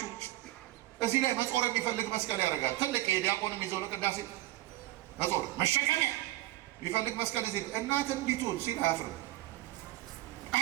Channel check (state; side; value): quieter; left; 16.5 dB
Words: እዚህ ላይ መጾር የሚፈልግ መስቀል ያደርጋል። ትልቅ የዲያቆንም ይዘው ለቅዳሴ መጾር መሸከሚያ የሚፈልግ መስቀል እዚህ እናት እንዲቱን ሲል አያፍርም።